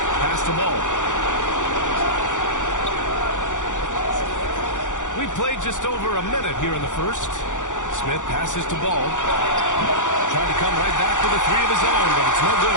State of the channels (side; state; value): right; late; 0.86 ms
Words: Pass the ball. We played just over a minute here in the first. Smith passes to Ball. Trying to come right back with a three of his own, but it's no